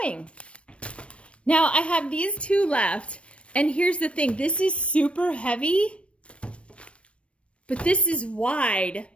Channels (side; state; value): right; late; 0.061 ms